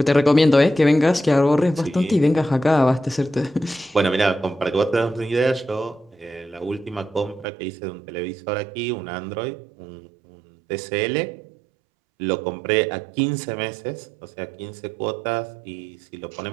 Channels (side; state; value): left; drops out; at 7.5 s